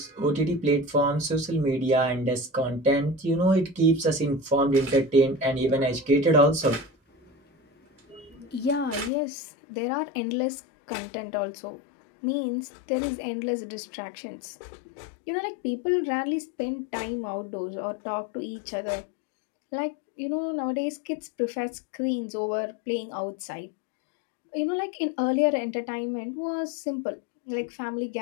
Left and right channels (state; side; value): drops out; right; at 9.1 s